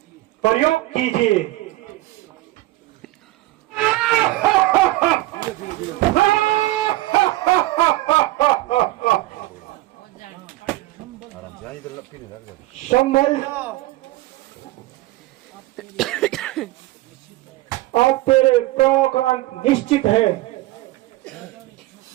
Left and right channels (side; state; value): left; quieter; 18.2 dB